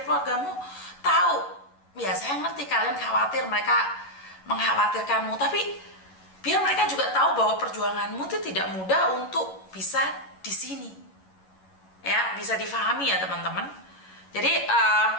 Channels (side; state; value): right; late; 11 ms